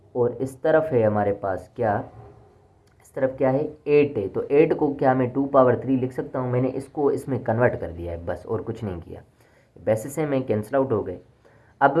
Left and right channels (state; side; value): identical; both; correlation 1.00